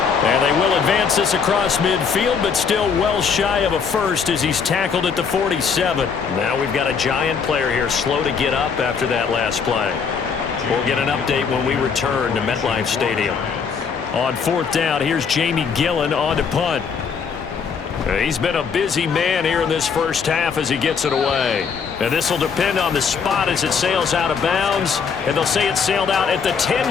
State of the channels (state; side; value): quieter; right; 6.1 dB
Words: And they will advance this across midfield, but still well shy of a first as he's tackled at the 47. Now we've got a Giant player here slow to get up after that last play. We'll get an update when we return to MetLife Stadium. On fourth down, here's Jamie Gillen on to punt. He's been a busy man here in this first half as he gets it away. And this will depend on the spot as it sails out of bounds. And they'll say it sailed out at the